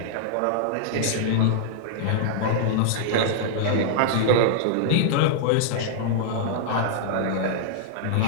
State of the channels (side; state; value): both; different; correlation -0.01